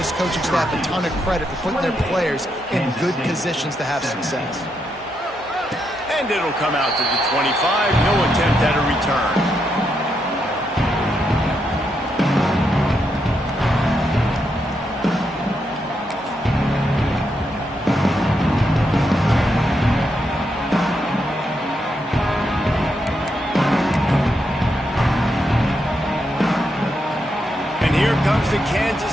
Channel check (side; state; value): both; normal; correlation 0.81